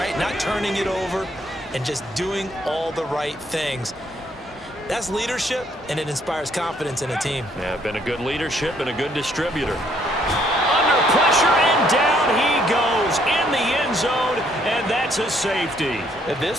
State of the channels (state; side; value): normal; both; correlation 0.68